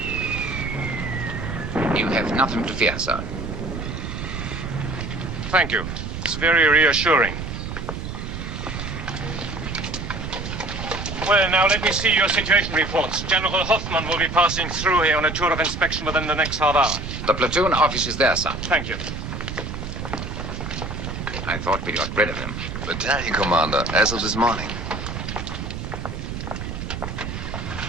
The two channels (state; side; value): noise; right; rumble, 6 dB below the sound